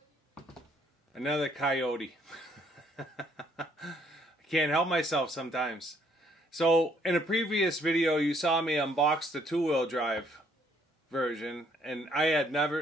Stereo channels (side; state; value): both; normal; correlation 0.66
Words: Another coyote. I can't help myself sometimes. So in a previous video you saw me unbox the two-wheel drive version, and I